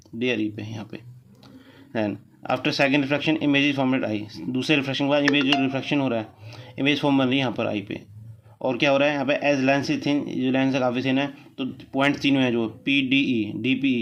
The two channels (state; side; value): identical; both; correlation 1.00